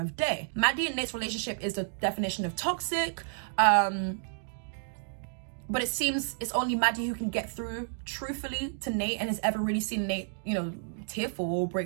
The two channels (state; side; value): silent; left; digital silence